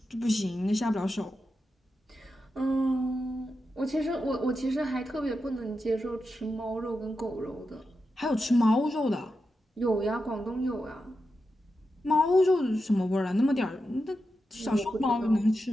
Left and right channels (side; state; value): both; normal; correlation 0.89